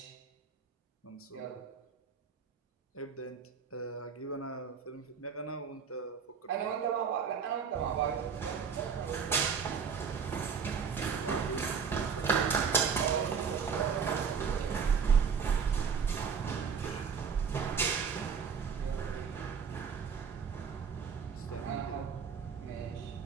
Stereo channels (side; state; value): left; quieter; 6.3 dB